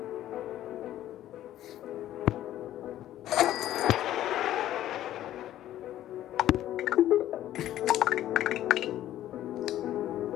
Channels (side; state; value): right; quieter; 12.9 dB